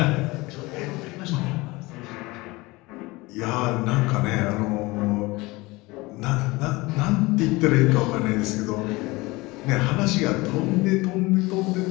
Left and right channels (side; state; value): right; quieter; 22.3 dB